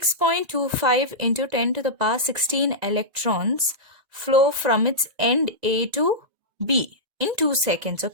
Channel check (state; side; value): late; left; 2.0 ms